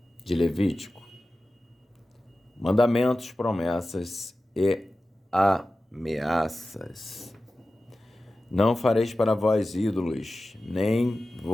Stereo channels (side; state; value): both; normal; correlation 0.95